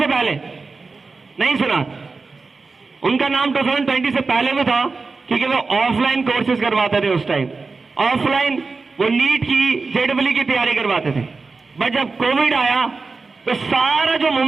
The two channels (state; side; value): quieter; left; 4.1 dB